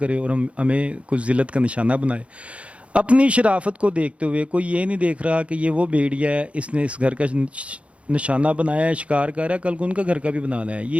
और हमें कुछ ज़िल्लत का निशाना बनाए। अपनी शराफत को देखते हुए कोई ये नहीं देख रहा कि ये वो भेड़िया है, इसने इस घर का निशाना बनाया है, शिकार कर रहा है, कल को उनका घर का भी बनाना है।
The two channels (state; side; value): late; left; 0.062 ms